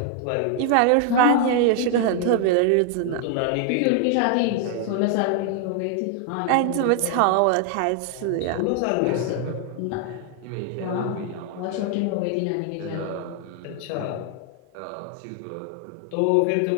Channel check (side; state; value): both; different; correlation 0.00